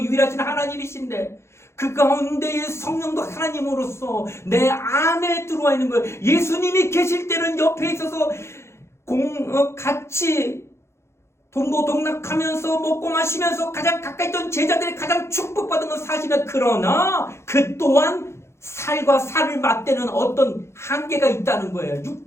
하나님이신데 그 가운데의 성령도 하나님으로서 내 안에 들어와 있는 거예요. 예수님이 계실 때는 옆에 있어서 같이 동고동락하면서 먹고 마시면서 가장 가까이 있던 제자들이 가장 축복받은 건 사실은 그러나 그 또한 살과 살을 맞대는 어떤 한계가 있다는 거예요.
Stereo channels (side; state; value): right; late; 0.13 ms